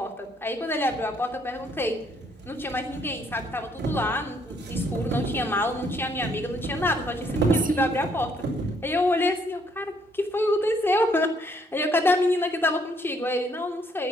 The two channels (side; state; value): both; normal; correlation 0.68